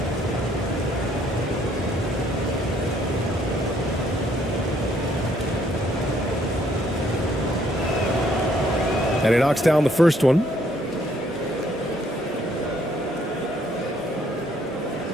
And he knocks down the first one.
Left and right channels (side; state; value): both; normal; correlation 0.66